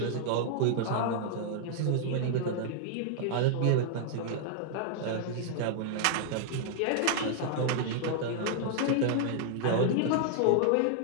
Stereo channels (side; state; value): both; different; correlation -0.01